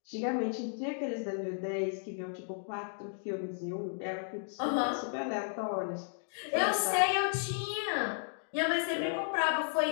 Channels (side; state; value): right; silent; digital silence